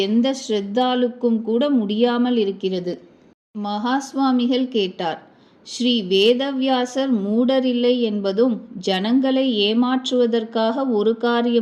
எந்த ஸ்ரத்தாலுக்கும் கூட முடியாமல் இருக்கிறது. மகா சுவாமிகள் கேட்டார். ஸ்ரீ வேதவியாசர் மூடரில்லை என்பதும் ஜனங்களை ஏமாற்றுவதற்காக ஒரு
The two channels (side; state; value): both; identical; correlation 1.00